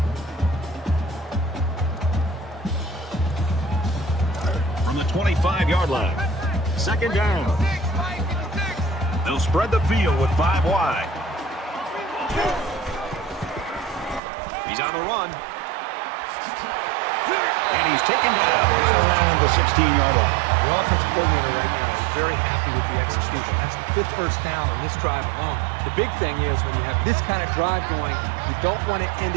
From the 25-yard line. Second down. They'll spread the field with 5 wide. He's on the run. And he's taken down around the 16-yard line. The offensive coordinator right now is very happy with the execution. That's the 5th first down on this drive alone. The big thing is when you have this kind of drive going, you don't want to end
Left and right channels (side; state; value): left; drops out; at 14.2 s